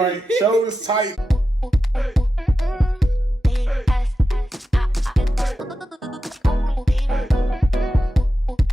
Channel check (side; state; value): both; normal; correlation 0.91